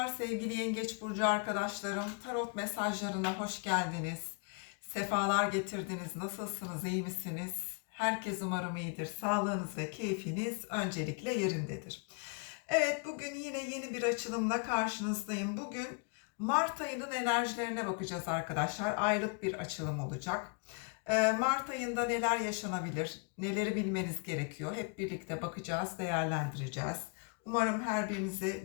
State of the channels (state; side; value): quieter; right; 35.0 dB